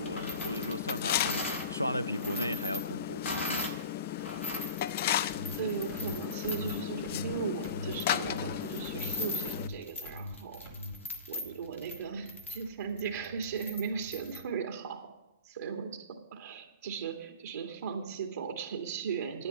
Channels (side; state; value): both; inverted; correlation -0.37